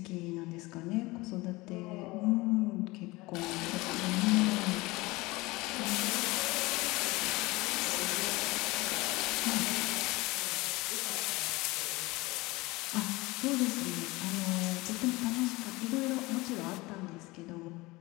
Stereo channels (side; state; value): right; quieter; 21.9 dB